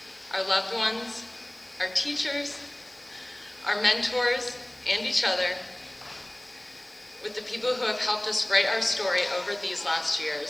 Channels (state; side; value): noise; left; hiss, 29 dB below the sound